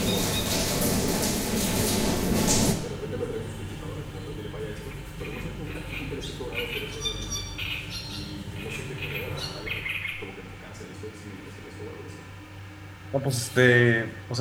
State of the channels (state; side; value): identical; both; correlation 1.00